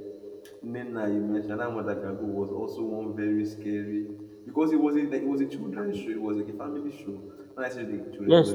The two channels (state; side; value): identical; both; correlation 1.00